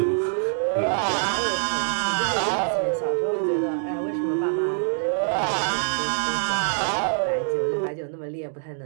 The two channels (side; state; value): left; silent; digital silence